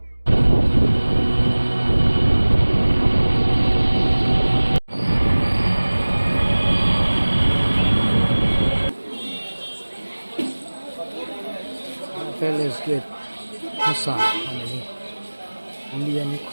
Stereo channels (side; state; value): both; inverted; correlation -1.00